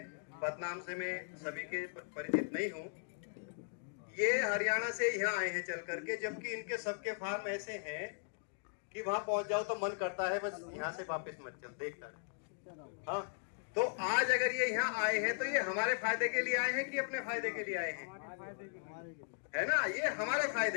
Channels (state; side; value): silent; right; digital silence